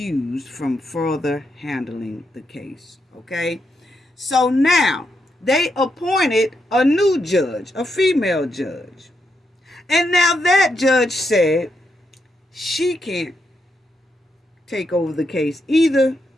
from further handling the case. Okay? So now they appointed a new judge, a female judge. And now that judge said she can't take over the case either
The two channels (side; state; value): both; normal; correlation 0.82